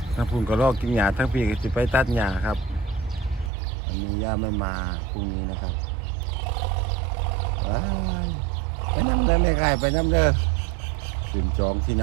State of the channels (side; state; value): left; drops out; at 3.5 s